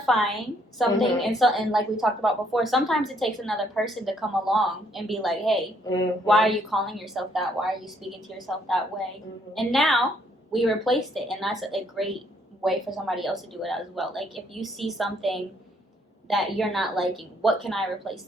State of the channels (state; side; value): normal; both; correlation 0.68